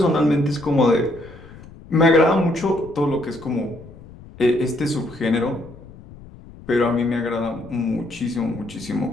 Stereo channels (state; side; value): noise; left; rumble, 19 dB below the sound